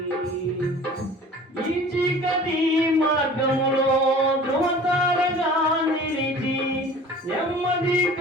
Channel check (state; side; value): normal; both; correlation 0.44